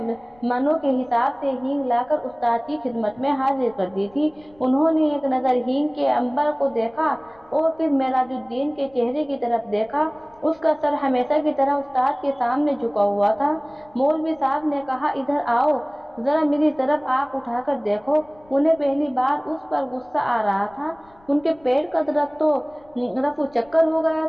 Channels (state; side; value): noise; left; rumble, 29 dB below the sound